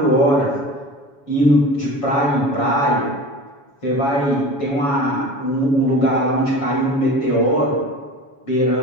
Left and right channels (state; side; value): late; right; 7.1 ms